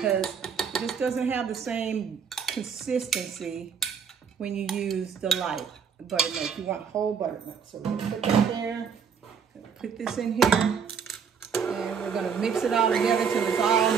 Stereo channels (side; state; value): left; quieter; 6.7 dB